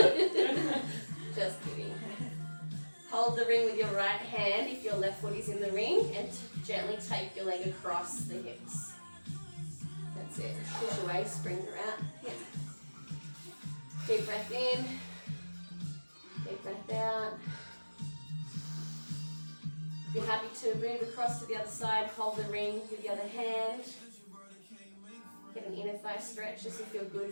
Just kidding. Hold the ring with your right hand if your left foot is in the ring and gently take your leg across the hips. That's it. Push away, springs are out. Yeah. Deep breath in. Deep breath out. If you're happy to move across to the other side, hold the ring with the other hand. Get an inner thigh stretch just to feel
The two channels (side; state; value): both; inverted; correlation -1.00